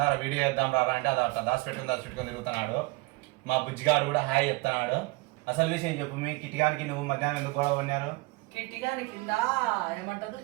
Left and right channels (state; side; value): quieter; left; 24.1 dB